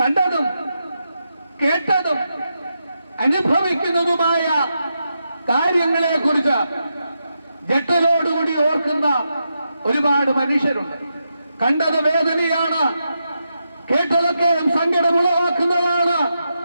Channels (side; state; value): both; inverted; correlation -0.86